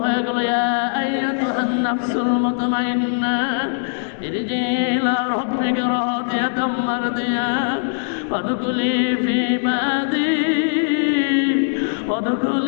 হয়ে গেল, ইয়া আইয়াতুহান নাফসুল মুতমাইন্না ইরজি ইলা রাব্বিকা রাদিয়াতাম মারদিয়া ফাদখুলি ফি ইবাদি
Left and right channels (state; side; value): silent; right; digital silence